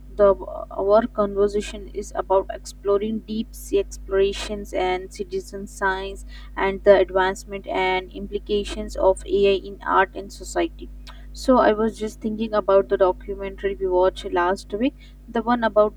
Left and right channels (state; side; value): identical; both; correlation 1.00